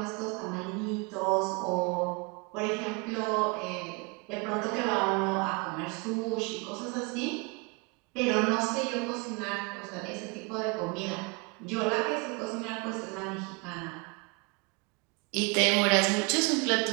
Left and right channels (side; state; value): left; quieter; 30.2 dB